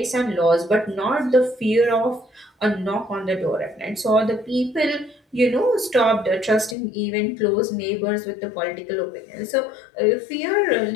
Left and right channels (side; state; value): right; drops out; at 6.8 s